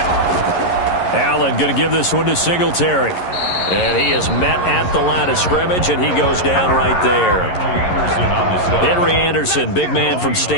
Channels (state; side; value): late; right; 11 ms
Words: Allen going to give this one to Singletary. And he is met at the line of scrimmage, and he goes down right there. Henry Anderson, big man from